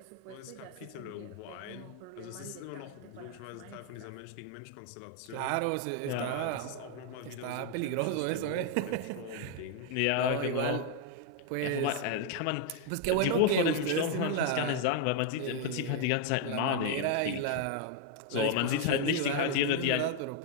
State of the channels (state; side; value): different; both; correlation 0.00